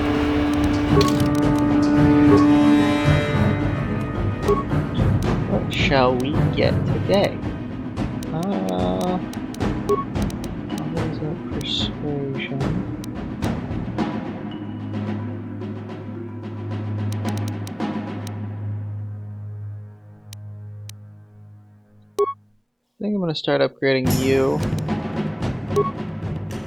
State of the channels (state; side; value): identical; both; correlation 1.00